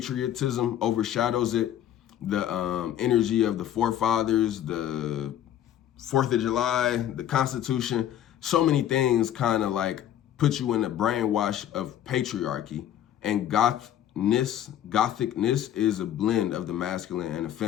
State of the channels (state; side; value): quieter; right; 11.1 dB